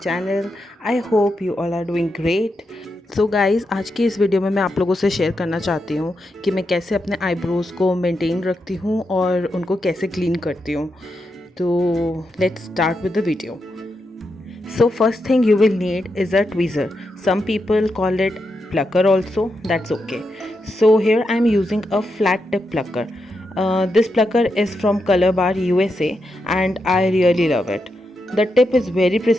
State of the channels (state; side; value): normal; both; correlation 0.85